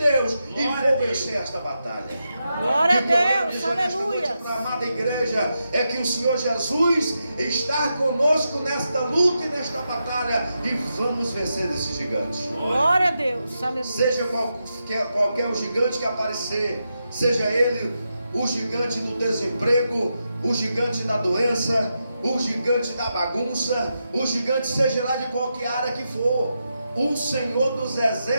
e vou vencer esta batalha. Glória a Deus, aleluia. Para a amada igreja, é que o Senhor Jesus está conosco nesta luta e nesta batalha, e vamos vencer esse gigante. Glória a Deus, aleluia. Seja qualquer o gigante que aparecer, seja ele o gigante do desemprego, o gigante da doença, o gigante da bagunça, o gigante seja lá de qualquer área que for, o Senhor dos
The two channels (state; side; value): inverted; both; correlation -0.87